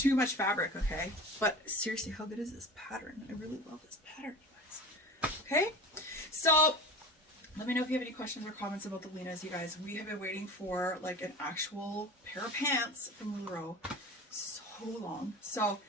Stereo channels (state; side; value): normal; both; correlation 0.35